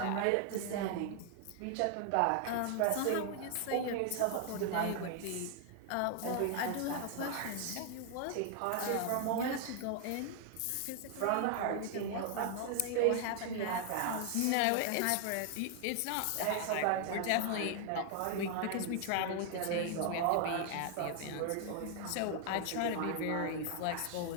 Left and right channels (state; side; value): different; both; correlation 0.00